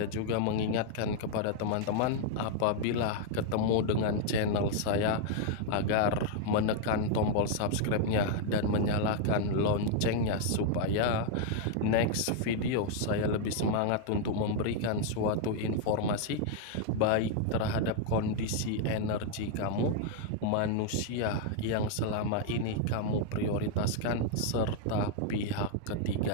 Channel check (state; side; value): different; both; correlation 0.00